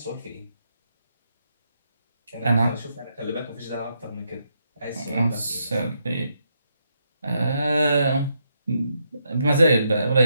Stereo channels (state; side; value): inverted; both; correlation -0.79